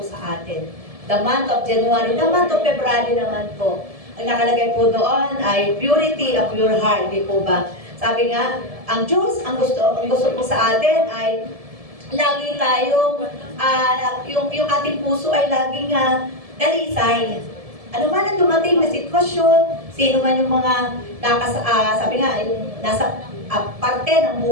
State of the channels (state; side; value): late; left; 1.7 ms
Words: sa atin. The month of January, the month of February naman po. Ang nakalagay po doon ay purity of your heart, di po ba? Sabi nga, ang Diyos, ang gusto po sa atin ay lagi tayong, yung ating puso ay laging dalisay. Ano man ang dumating na sitwasyon, sino man yung mga sabi nga, yung nasa parte ng